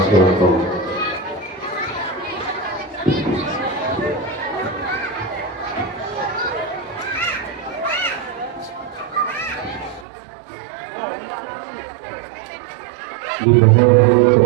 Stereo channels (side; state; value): left; drops out; at 10.1 s